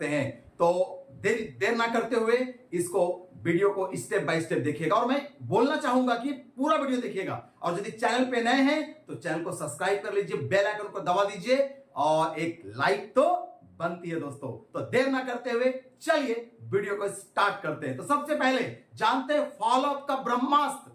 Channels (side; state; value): both; identical; correlation 1.00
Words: हैं। तो देर ना करते हुए इसको वीडियो को स्टेप बाय स्टेप देखिएगा। और मैं बोलना चाहूंगा कि पूरा वीडियो देखिएगा, और यदि चैनल पे नए हैं तो चैनल को सब्सक्राइब कर लीजिए, बेल आइकन को दबा दीजिए और एक लाइक तो बनती है दोस्तों। तो देर ना करते हुए चलिए वीडियो को स्टार्ट करते हैं। तो सबसे पहले जानते हैं फॉलोअप का ब्रह्मास्त्र।